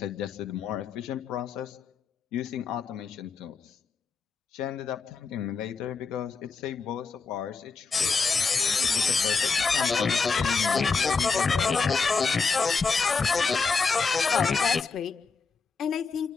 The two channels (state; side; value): quieter; right; 4.9 dB